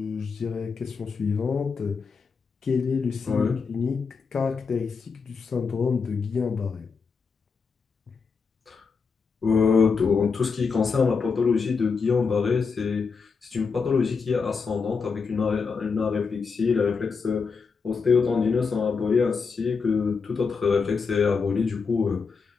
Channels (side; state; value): right; quieter; 5.2 dB